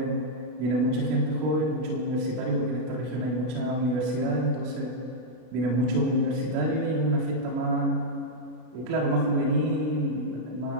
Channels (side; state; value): left; late; 32 ms